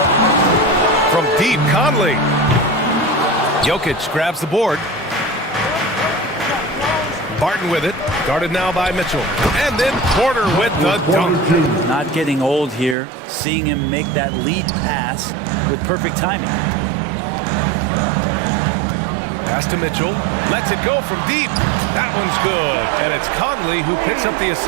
From deep, Conley. Jokic grabs the board. Barton with it, guarded now by Mitchell. And then Porter with the dunk. Not getting old here, seeing him make that lead pass with perfect timing. Pass to Mitchell, lets it go from deep. That one's good, and it's Conley who picks up the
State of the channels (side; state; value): left; drops out; at 13.0 s